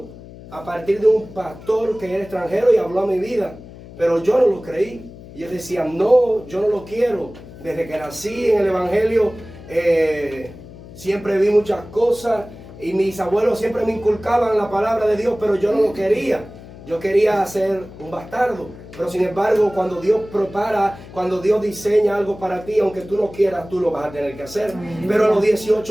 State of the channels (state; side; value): noise; left; hum, 17 dB below the sound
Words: a partir de un pastor que era extranjero y habló a mi vida. Pero yo no lo creí. Y yo decía, no, yo no lo quiero. Desde que nací en el Evangelio, siempre vi muchas cosas. Y mis abuelos siempre me inculcaban la palabra de Dios, pero yo no lo quería. Yo quería ser un bastardo. Pero sin embargo, cuando Dios prepara, cuando Dios diseña algo para ti, aunque tú no quieras, tú lo vas a tener que hacer. Pero a los